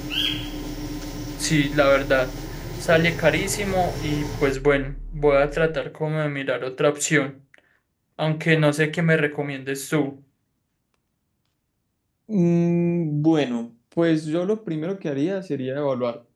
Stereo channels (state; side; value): identical; both; correlation 1.00